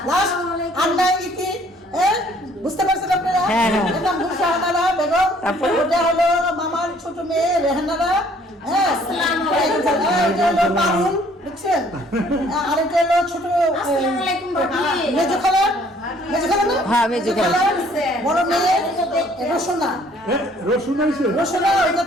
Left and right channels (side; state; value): both; normal; correlation 0.59